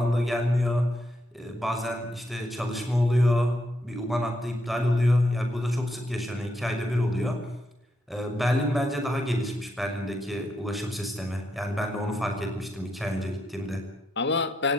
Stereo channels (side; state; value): both; normal; correlation 0.80